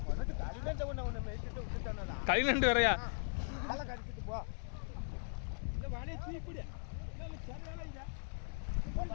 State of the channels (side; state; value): right; silent; digital silence